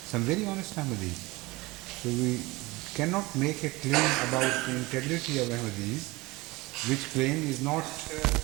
some very honest Ahmadis. So we cannot make a claim about the integrity of Ahmadis, which claim is not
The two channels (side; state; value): left; quieter; 22.2 dB